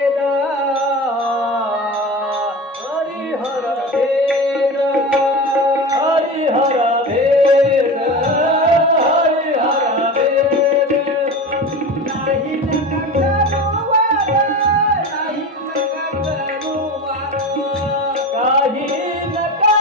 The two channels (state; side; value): normal; both; correlation 0.29